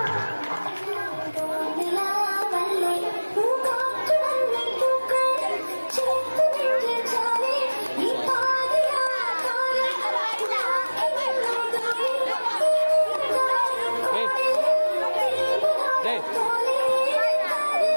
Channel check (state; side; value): inverted; both; correlation -1.00